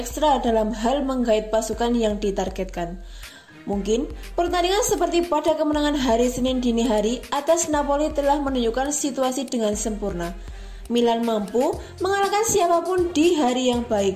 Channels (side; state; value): both; identical; correlation 1.00